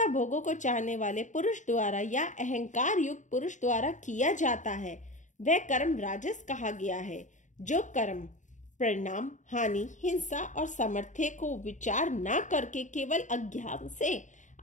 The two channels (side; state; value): right; late; 0.36 ms